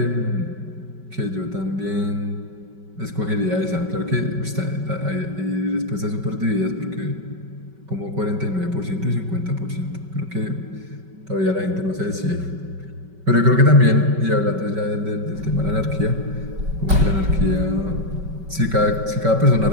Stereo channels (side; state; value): left; late; 5.3 ms